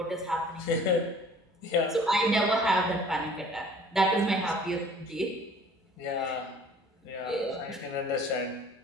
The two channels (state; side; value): normal; both; correlation 0.51